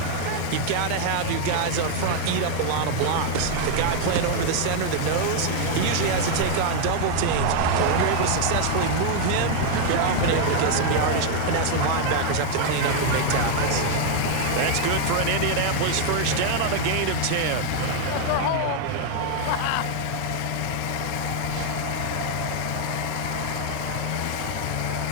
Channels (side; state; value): both; different; correlation 0.00